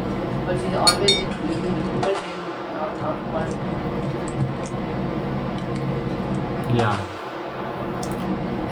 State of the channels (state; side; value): identical; both; correlation 1.00